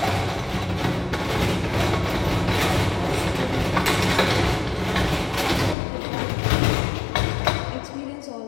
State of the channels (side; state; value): right; drops out; at 5.8 s